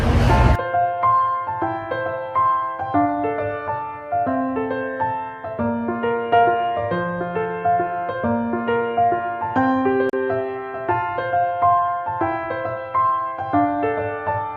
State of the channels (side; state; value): both; identical; correlation 1.00